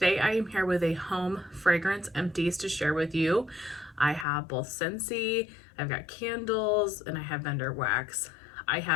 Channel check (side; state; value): right; drops out; at 4.2 s